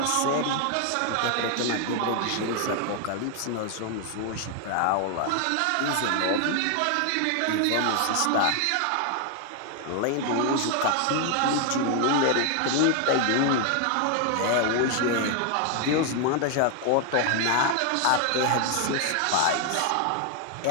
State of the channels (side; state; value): both; different; correlation 0.00